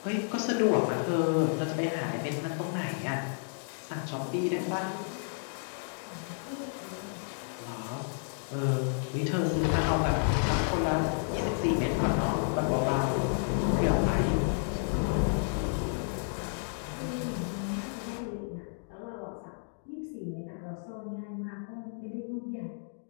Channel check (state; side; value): silent; right; digital silence